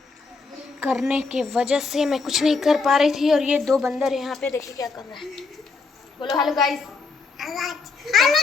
करने के वजह से मैं कुछ नहीं कर पा रही थी। और ये दो बंदर यहाँ पे देखिए क्या कर रहे हैं। बोलो हेलो गाइस। हेलो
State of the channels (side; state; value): right; quieter; 4.3 dB